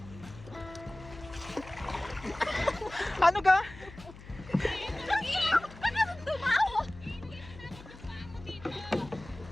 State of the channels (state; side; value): noise; left; hum, 17 dB below the sound